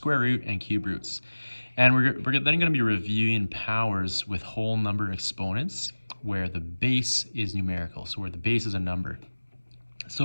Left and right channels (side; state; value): both; inverted; correlation -1.00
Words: root, and cube roots. And we're then going to be reviewing powers with whole number exponents where the base is numerical, so where the base is a number.